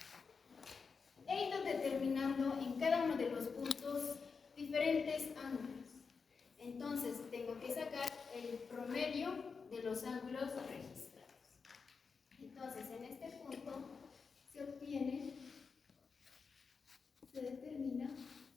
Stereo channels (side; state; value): right; quieter; 5.2 dB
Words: He ido determinando en cada uno de los puntos diferentes ángulos. Entonces tengo que sacar el promedio de los ángulos registrados. Entonces en este punto se determina